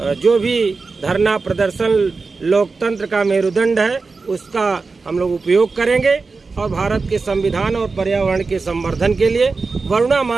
जो भी धरना प्रदर्शन लोकतंत्र का मेरुदंड है उसका हम लोग उपयोग करेंगे, और भारत के संविधान और पर्यावरण के संवर्धन के लिए वरुणा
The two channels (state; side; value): quieter; left; 4.2 dB